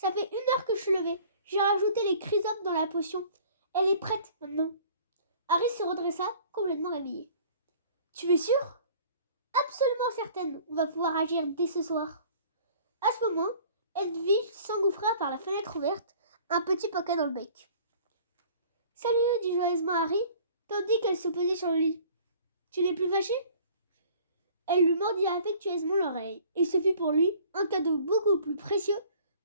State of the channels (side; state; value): both; inverted; correlation -0.51